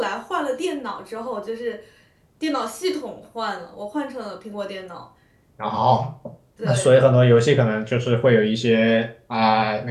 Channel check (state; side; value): identical; both; correlation 1.00